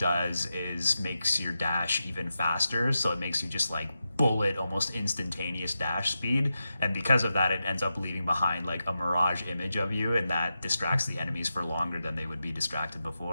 is makes your dash even faster. So it makes you just like bullet, almost instantaneous dash speed. And because of that, it ends up leaving behind like a mirage image of you, and that distracts the enemies for longer than they would be distracted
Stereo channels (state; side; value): inverted; both; correlation -0.90